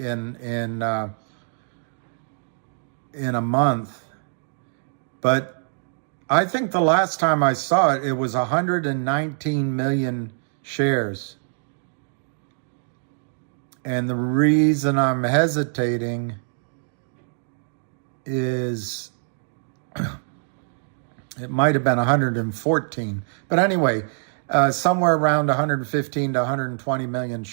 a month. But I think the last time I saw it, it was 119 million shares. And the reason I'm hesitating is it might have been 114. But anyway, somewhere around 115 to 120 million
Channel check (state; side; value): silent; left; digital silence